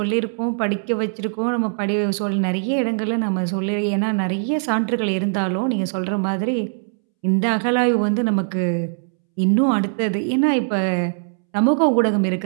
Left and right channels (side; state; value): left; silent; 65 dB below the other